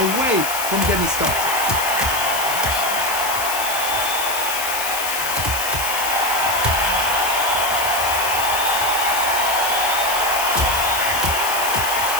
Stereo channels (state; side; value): noise; left; hiss, 4 dB below the sound